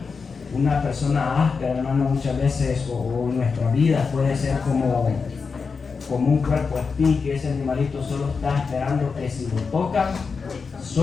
Una persona áspera, hermano, muchas veces, o en nuestra vida, puede ser como un cuerpo espín, que ese animalito solo está esperando que si lo toca,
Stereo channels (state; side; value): quieter; right; 5.1 dB